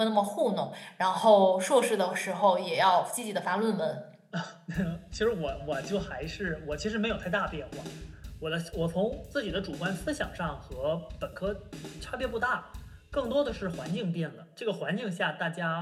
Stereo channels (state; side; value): identical; both; correlation 1.00